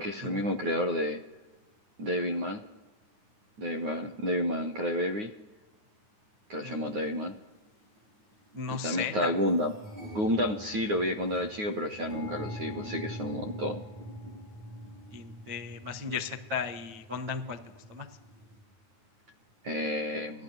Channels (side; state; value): left; late; 9.5 ms